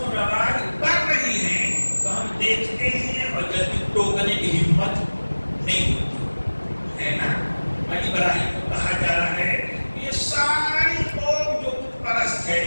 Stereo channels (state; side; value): inverted; both; correlation -1.00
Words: رواج کر رہی ہیں تو ہم دیکھتے ہیں اور جلدی ٹوکنے کی ہمت نہیں ہوتی ہے نا۔ ابراہیم کو کہا جا رہا ہے یہ ساری قوم جو بت پرست